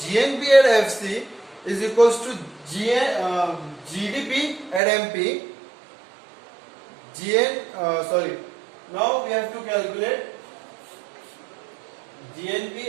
at FC is equals to GDP at MP. Now we have to calculate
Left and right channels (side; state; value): left; drops out; at 4.8 s